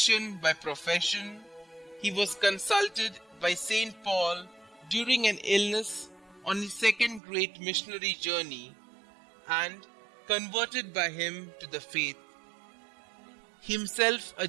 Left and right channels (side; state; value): left; drops out; at 7.2 s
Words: by profession, he was consulted by Saint Paul during an illness on his second great missionary journey and converted by him to the faith. Himself a